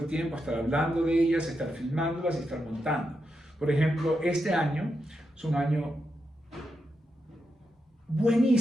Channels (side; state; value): both; normal; correlation 0.85